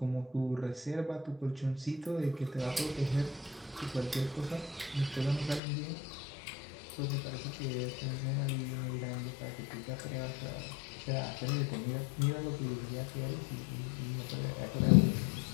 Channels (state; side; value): drops out; right; at 5.6 s